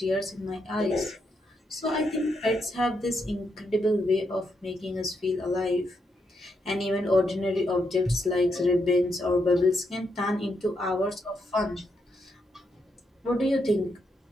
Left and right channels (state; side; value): normal; both; correlation 0.80